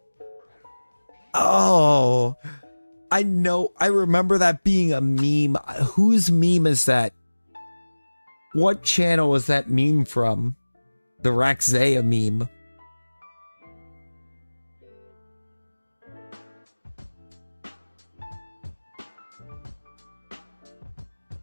Oh, I know. I remember that being a meme. Whose meme is that? What channel is that meme from? The Rakazea meme.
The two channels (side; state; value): both; inverted; correlation -1.00